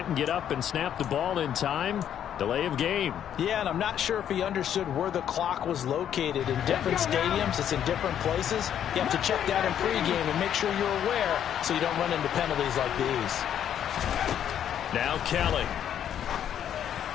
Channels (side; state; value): right; quieter; 9.8 dB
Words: get up and snap the ball in time. Delay of game. Yeah, and I'm not sure if he understood where the clock was located. In different stadiums, it's in different places. You have to check that in pregame and make sure you're aware so you don't run into penalties like these. Now Kelly.